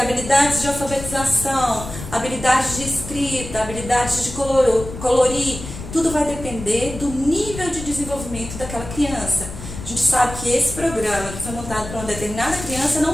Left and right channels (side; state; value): left; noise; rumble, 11 dB below the sound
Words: de alfabetização, habilidades de escrita, habilidades de colorir, tudo vai depender do nível de desenvolvimento daquela criança. A gente sabe que esse programa que foi montado para uma determinada criança